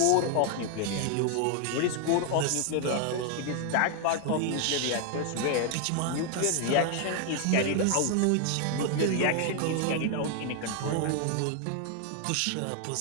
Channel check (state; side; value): different; both; correlation 0.00